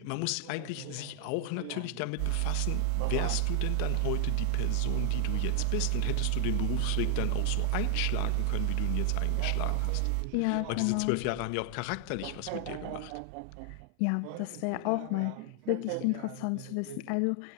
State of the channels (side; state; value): both; different; correlation 0.00